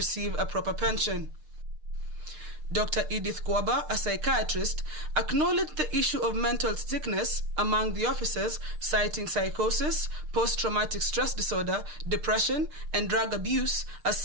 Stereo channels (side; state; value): left; late; 6.6 ms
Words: a proper pension. Dr. Edith Kwaba, a psychiatrist, acknowledged the issue of mental sickness among the officers, citing psychosis, post-traumatic stress disorder, depression, and drug abuse as